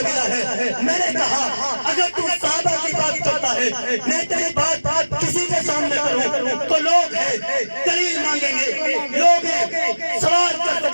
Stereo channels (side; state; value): both; inverted; correlation -1.00